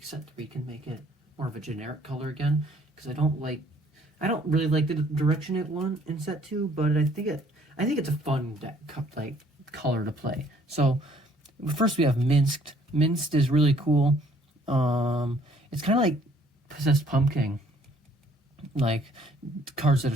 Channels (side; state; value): both; normal; correlation 0.61